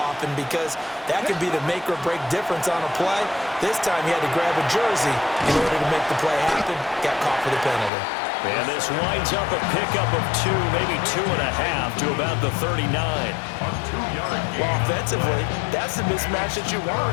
because that could be the make or break difference on a play. This time he had to grab a jersey in order to make the play happen. Got caught for the penalty. And this winds up a pickup of 2, maybe 2.5 to about the 39. Well, offensively, that's the mismatch that you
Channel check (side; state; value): right; drops out; at 7.9 s